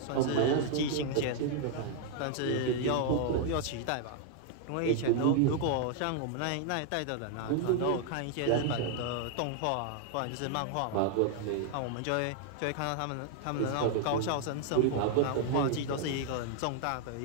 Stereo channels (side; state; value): both; different; correlation 0.00